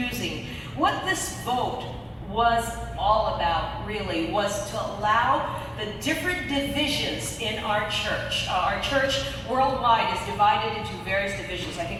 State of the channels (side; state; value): both; identical; correlation 1.00